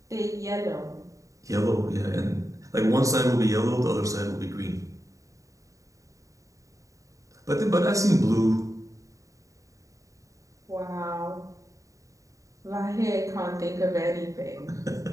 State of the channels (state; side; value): late; left; 0.16 ms